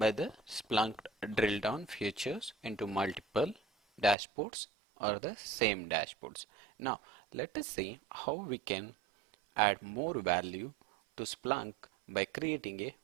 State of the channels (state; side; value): drops out; left; at 4.2 s